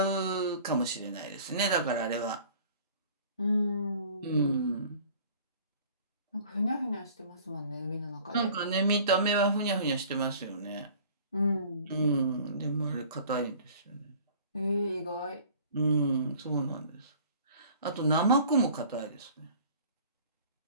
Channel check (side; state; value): both; inverted; correlation -0.49